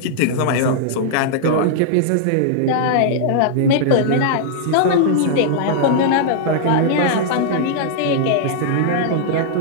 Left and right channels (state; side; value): different; both; correlation -0.01